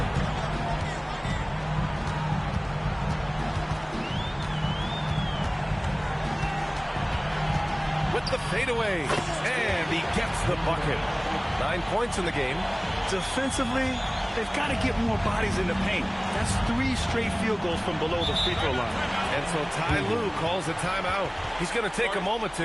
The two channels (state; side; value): identical; both; correlation 1.00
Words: With the fadeaway. And he gets the bucket. 9 points in the game. Defensively, they've got to get more bodies in the paint. That's 3 straight field goals from below the free throw line. And so Ty Lue calls a timeout. He's going to take a moment